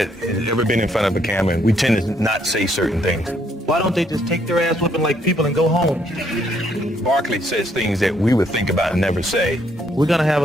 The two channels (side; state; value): both; normal; correlation 0.70